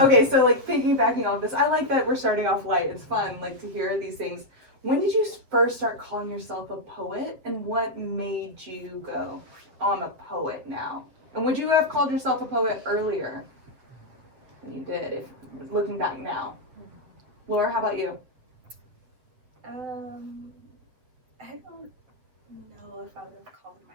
so like piggybacking off this, I like that we're starting off light. It's fun, like to hear these things. When did you first start calling yourself a poet, and what made you go, oh, I'm a poet now? And would you have called yourself a poet earlier than you did, if looking back now? Laura, how about you? I don't know if I would have called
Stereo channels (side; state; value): left; late; 7.9 ms